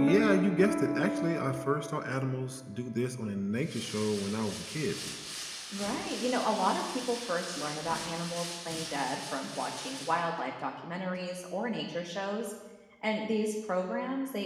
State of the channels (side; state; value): both; identical; correlation 1.00